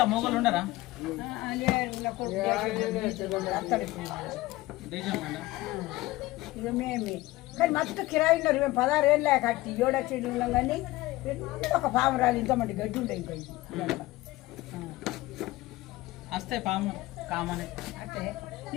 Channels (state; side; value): quieter; right; 18.7 dB